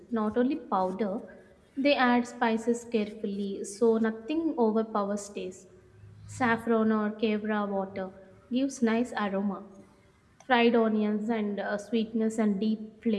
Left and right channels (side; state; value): both; identical; correlation 1.00